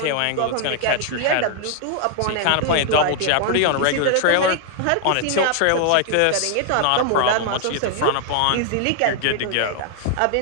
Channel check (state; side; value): different; both; correlation 0.00